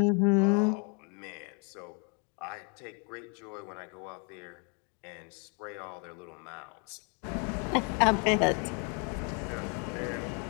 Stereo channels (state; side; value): quieter; right; 37.2 dB